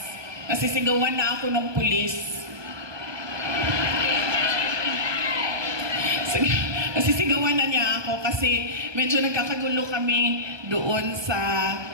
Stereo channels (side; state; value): left; late; 1.2 ms